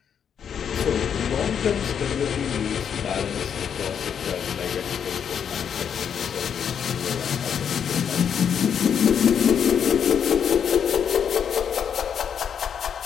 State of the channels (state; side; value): quieter; right; 7.8 dB